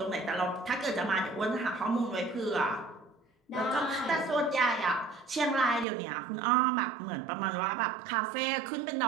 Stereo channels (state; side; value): drops out; left; at 5.9 s